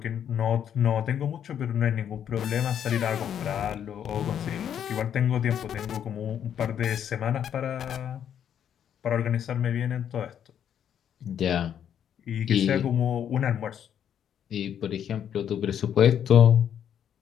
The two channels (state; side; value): quieter; right; 9.2 dB